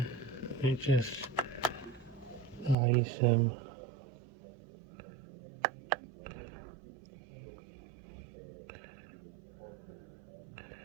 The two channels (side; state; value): left; drops out; at 2.8 s